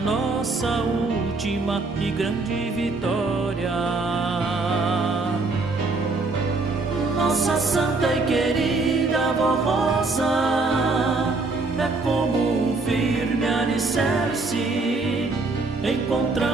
última e grande vitória. Nossa santa e querida avó Rosa é como um firme alicerce,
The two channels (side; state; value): left; quieter; 3.6 dB